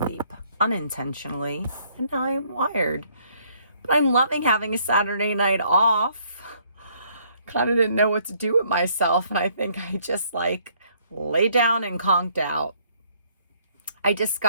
unintentionally and now I'm wired. But I'm loving having a Saturday night off. Kind of didn't know what to do with myself and I think I just lay down and conked out. I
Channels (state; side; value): inverted; both; correlation -0.65